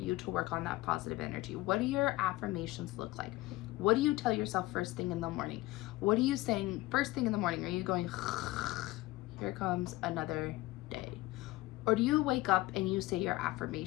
to work on that positive energy. What do your affirmations look like? What do you tell yourself first thing in the morning? What are you saying first thing in the morning? Are you going, here comes another day? Or do you wake up and you say your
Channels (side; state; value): right; quieter; 19.1 dB